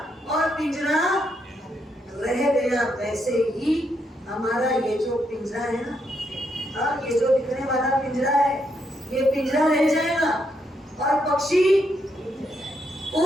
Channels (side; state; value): both; normal; correlation 0.78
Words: और पिंजरा रह गया। वैसे ही हमारा ये जो पिंजरा है ना, हाँ, ये जो दिखने वाला पिंजरा है, ये पिंजरा रह जाएगा और पक्षी